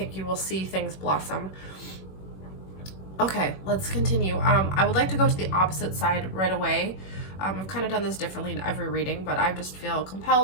you will see things blossom. Okay, let's continue. I would like to go to the opposite side right away. I've kind of done this differently in every reading, but I just feel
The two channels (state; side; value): late; right; 21 ms